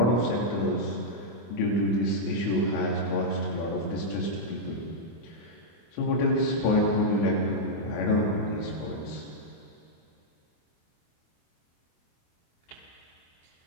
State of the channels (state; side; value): late; right; 24 ms